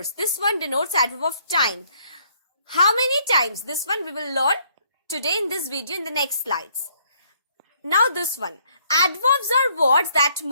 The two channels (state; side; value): inverted; both; correlation -0.66